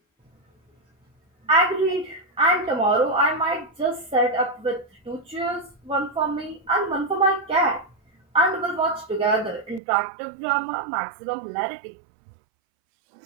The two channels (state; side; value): drops out; left; at 9.8 s